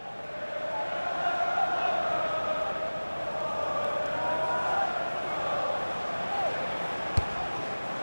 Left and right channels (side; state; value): both; inverted; correlation -1.00